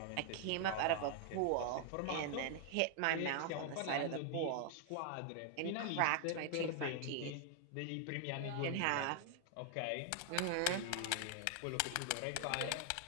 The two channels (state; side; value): different; both; correlation 0.00